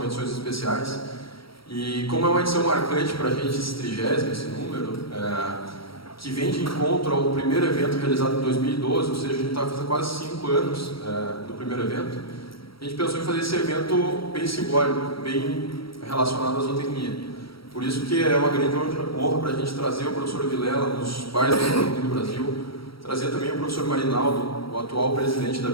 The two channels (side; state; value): right; late; 0.75 ms